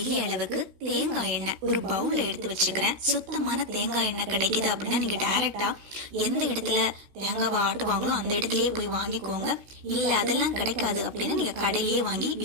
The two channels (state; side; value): late; left; 16 ms